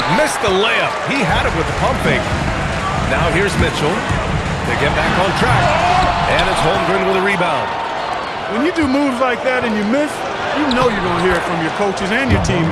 missed the layup. He had it with the pump fake. Now here's Mitchell to get back on track. And it's Holmgren with a rebound. When you do moves like that and you miss, you know you're going to hear it from your coaches and your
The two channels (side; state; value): both; identical; correlation 1.00